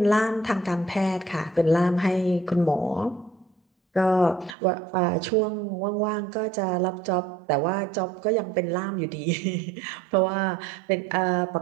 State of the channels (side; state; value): left; drops out; at 4.5 s